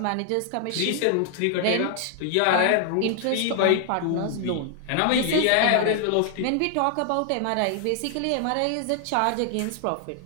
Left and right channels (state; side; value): different; both; correlation 0.00